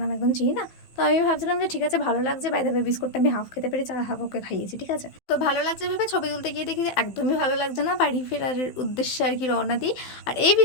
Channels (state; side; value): late; right; 15 ms